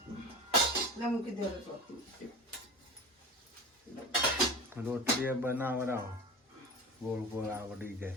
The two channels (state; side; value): normal; both; correlation 0.31